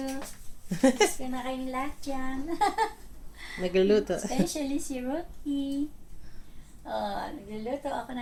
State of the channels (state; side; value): identical; both; correlation 1.00